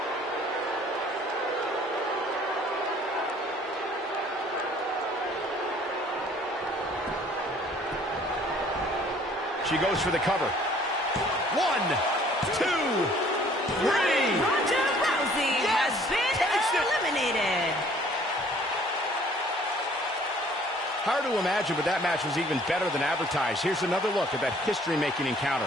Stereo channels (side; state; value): both; normal; correlation 0.56